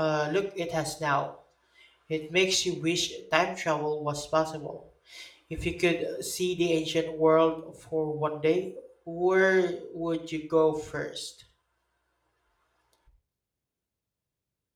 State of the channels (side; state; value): both; identical; correlation 1.00